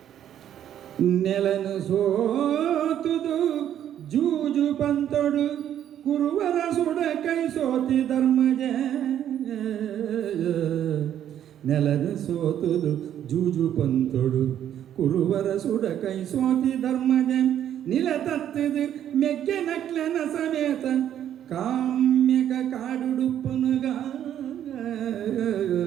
ನೆಲನು ಸೋತುದು ಜೂಜು ಪಂತೊಡು ಕುರುವರ ಸುಡ ಕೈ ಸೋತಿ ಧರ್ಮಜ ನೆಲನು ಸೋತುದು ಜೂಜು ಪಂತೊಡು ಕುರುವರ ಸುಡ ಕೈ ಸೋತಿ ಧರ್ಮಜ ನಿಲ ತತ್ತದು ಮೆಕ್ಕೆ ನಕ್ಲನ ಸಮೇತ ಕಾಮ್ಯಕ ಕಾಡುಡುಪ್ಪನುಗ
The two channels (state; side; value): quieter; left; 10.5 dB